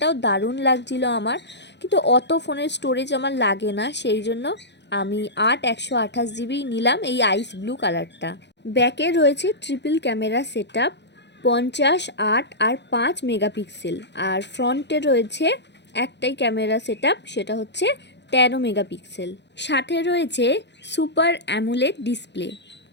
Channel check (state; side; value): late; right; 0.51 ms